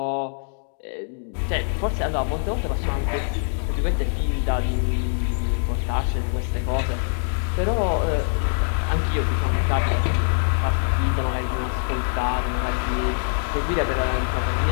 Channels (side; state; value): right; silent; digital silence